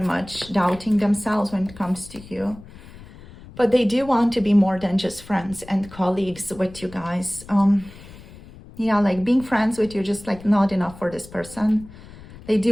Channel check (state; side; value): noise; left; rumble, 19 dB below the sound